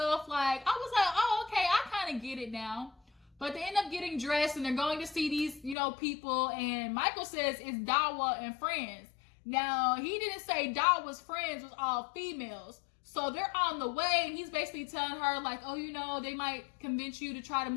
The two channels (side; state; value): right; drops out; at 5.8 s